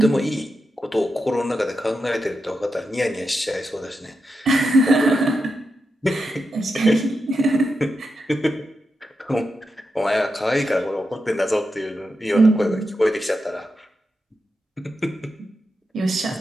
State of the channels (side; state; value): both; normal; correlation 0.88